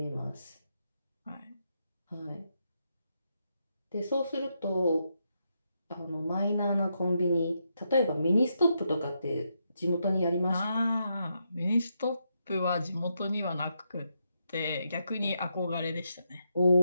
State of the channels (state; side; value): inverted; both; correlation -0.82